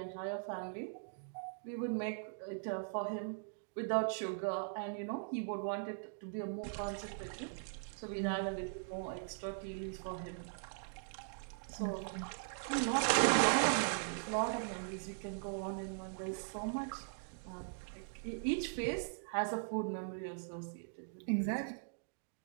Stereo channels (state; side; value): silent; left; digital silence